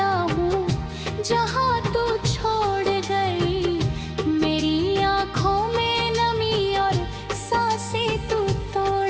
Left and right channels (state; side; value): identical; both; correlation 1.00